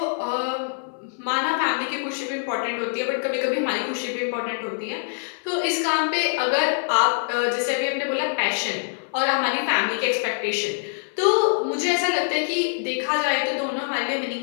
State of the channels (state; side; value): silent; right; 59 dB below the other